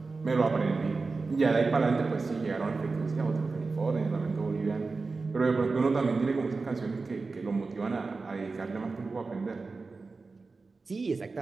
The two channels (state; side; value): quieter; left; 4.0 dB